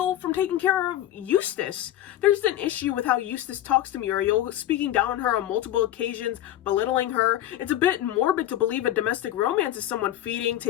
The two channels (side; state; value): right; quieter; 12.9 dB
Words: from taking care of Eustace. There's an issue with how Eustace talks to Muriel, speaking down on her on multiple occasions, belittling her. It's a bit morbid to believe a domestic romance is someone feeding,